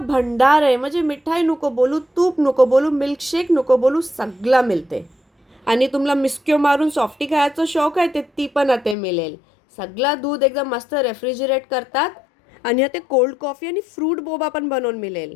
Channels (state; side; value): drops out; right; at 9.0 s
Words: आहे. म्हणजे मिठाई नको बोलू, तूप नको बोलू, मिल्कशेक नको बोलू, सगळं मिळते. आणि तुम्हाला मिस्क्यो मारून सॉफ्टी खायचं शौक आहे ती पण आता मिळेल. सगळं दूध एकदम मस्त रेफ्रिजरेट करतात. आणि ते कोल्ड कॉफी आणि फ्रूट बोबा पण बनवून